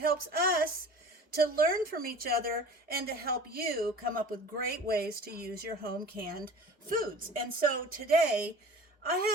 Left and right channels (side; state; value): both; normal; correlation 0.41